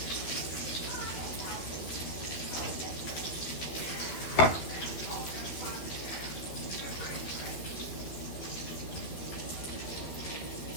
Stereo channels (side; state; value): right; late; 12 ms